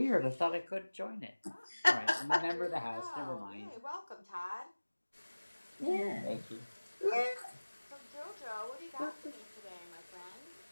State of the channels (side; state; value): both; inverted; correlation -1.00